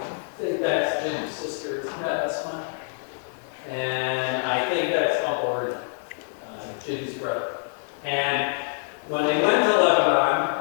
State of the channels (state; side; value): silent; right; digital silence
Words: think that's Jim's sister. Yeah, that's mine. And I think that's Uncle Ernie, Jim's brother. And when they went to